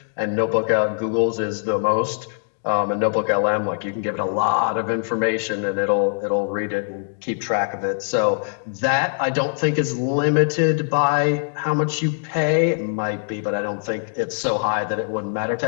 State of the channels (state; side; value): silent; right; digital silence